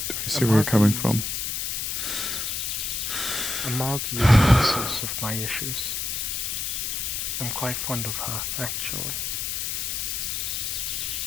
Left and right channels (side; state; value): left; noise; hiss, 2 dB below the sound